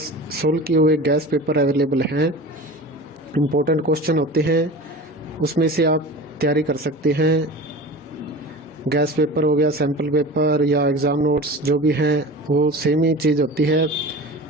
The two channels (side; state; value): both; normal; correlation 0.35